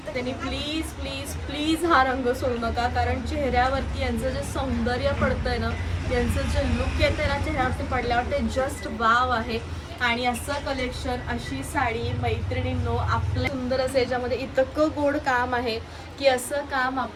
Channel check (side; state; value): both; identical; correlation 1.00